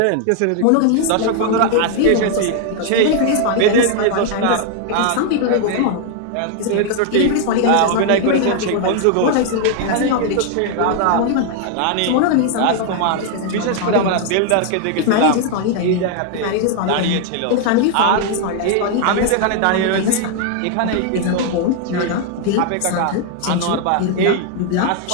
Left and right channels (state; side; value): different; both; correlation 0.00